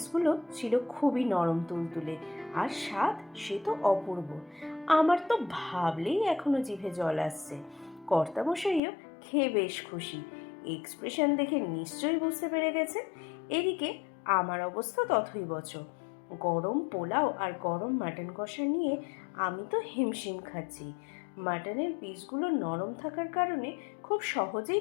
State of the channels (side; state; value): right; drops out; at 8.8 s